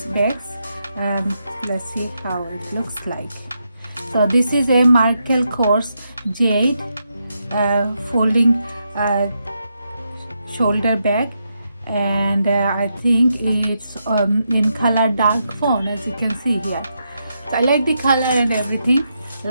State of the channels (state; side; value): inverted; both; correlation -0.82